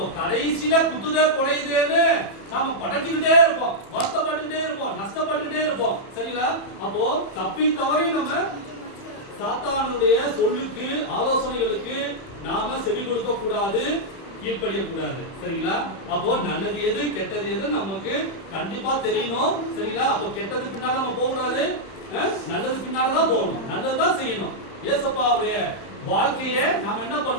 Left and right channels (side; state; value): right; late; 31 ms